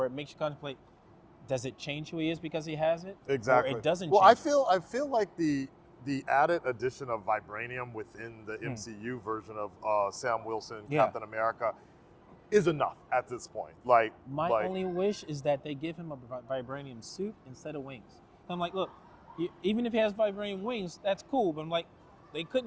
it makes you contemplate: does it change who he is because he has it? Exactly. Or it doesn't. Well, change I feel like the added addition of vibranium within the MCU version of Sam Wilson, Captain America, is enough at this point. Like, my only wish is that they give him a vibranium suit instead of wings. I'm like, look, even if he has vibranium wings, that's cool, but I'm like, they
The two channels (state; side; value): identical; both; correlation 1.00